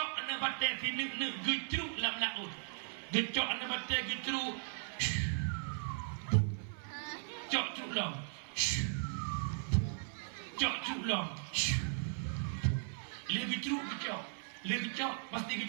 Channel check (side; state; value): left; silent; 53 dB below the other